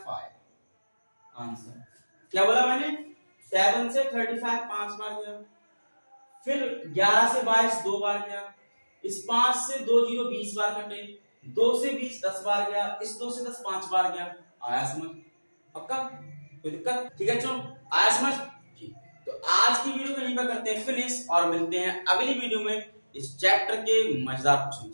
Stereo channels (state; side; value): inverted; both; correlation -1.00